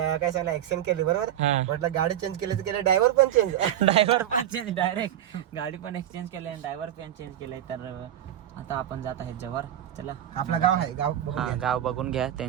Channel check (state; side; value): quieter; left; 11.3 dB